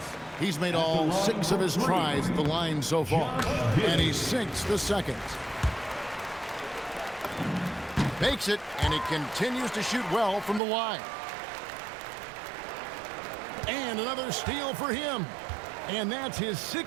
He's made all 6 of his tries at the line so far, and he sinks the second. Makes it, and he continues to shoot well from the line. And another steal for him. And that's his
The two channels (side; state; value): left; drops out; at 10.6 s